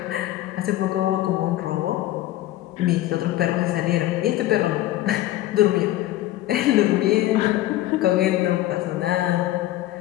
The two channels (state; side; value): quieter; right; 15.1 dB